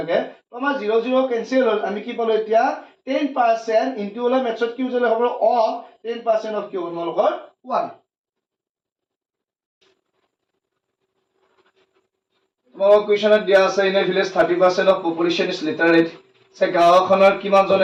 তো আমাৰ 0 0 কেনসেল হ'ল আমি কি পালো এতিয়া 10% ইনটু হলে মেথছত কি উজলে হ'ব অফ 10% অফ কি হ'ব তোমালোকৰ 1 তোমালোকৰ কুৱেশ্যনত দিয়া আছে in a village 30% of population is literate যে গাঁওখনৰ কিমান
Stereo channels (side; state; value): both; identical; correlation 1.00